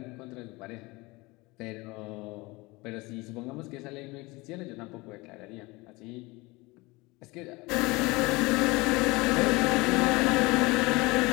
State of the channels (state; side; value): quieter; right; 23.5 dB